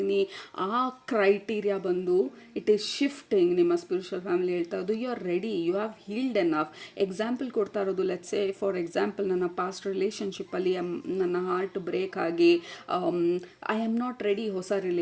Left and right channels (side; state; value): both; identical; correlation 1.00